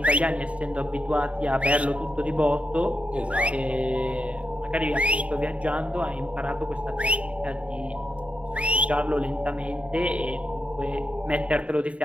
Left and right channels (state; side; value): late; left; 0.064 ms